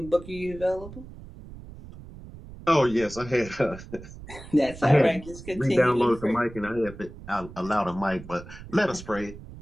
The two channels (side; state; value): right; noise; rumble, 15 dB below the sound